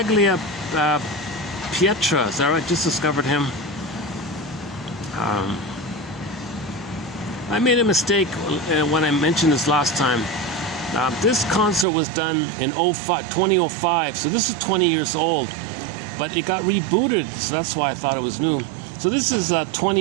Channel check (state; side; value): drops out; left; at 11.9 s